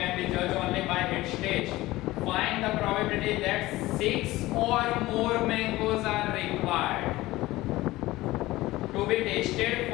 be judged only by its stage. Find the probability that 6 or more mangoes are required to be tasted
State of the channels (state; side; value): quieter; right; 18.1 dB